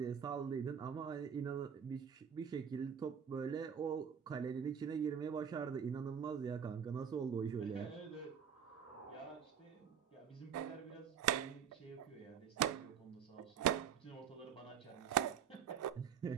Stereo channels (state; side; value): quieter; left; 7.9 dB